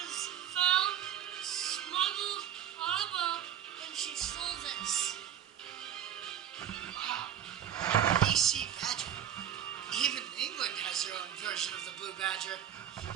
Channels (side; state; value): left; quieter; 10.0 dB